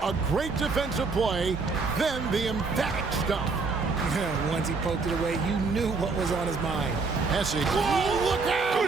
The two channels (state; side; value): quieter; left; 4.2 dB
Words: A great defensive play, then the emphatic stuff. Once he poked it away, you knew what was on his mind. Hesse. Whoa, look